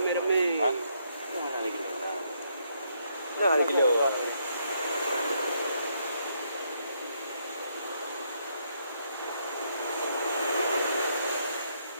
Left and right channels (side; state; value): both; inverted; correlation -0.74